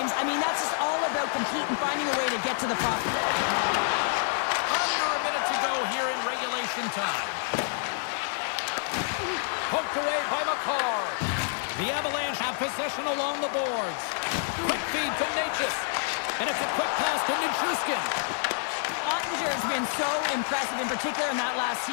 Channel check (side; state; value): right; silent; 59 dB below the other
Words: I mean, that's just all about competing, finding a way to get to the puck. Under a minute to go here in regulation time. Poked away by McCarr. The Avalanche have possession along the boards. Quick feed to Natchez. And it's a quick pass to Nichushkin. Ottinger has been so impressive, in particular in that last